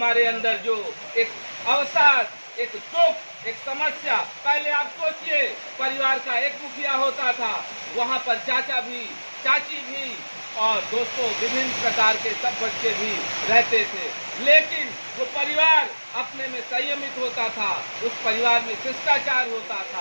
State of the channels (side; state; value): both; inverted; correlation -1.00